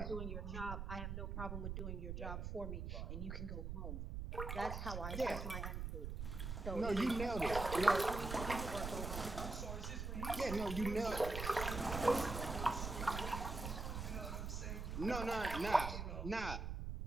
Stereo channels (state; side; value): noise; right; rumble, 4 dB below the sound